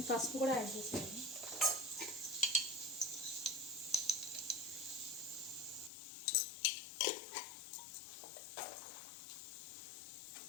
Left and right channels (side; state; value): right; drops out; at 5.9 s